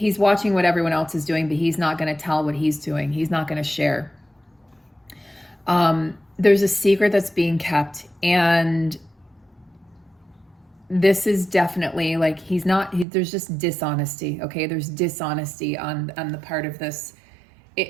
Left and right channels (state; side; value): drops out; left; at 13.1 s